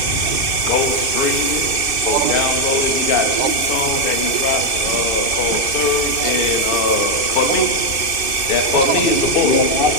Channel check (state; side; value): late; right; 2.6 ms